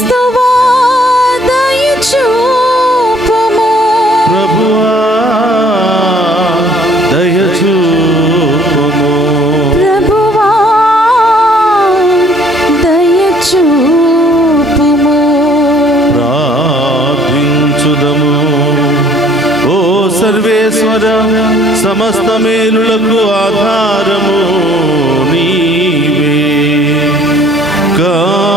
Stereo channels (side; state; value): both; normal; correlation 0.58